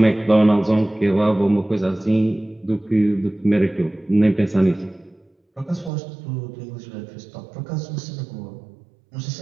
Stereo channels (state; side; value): drops out; left; at 5.9 s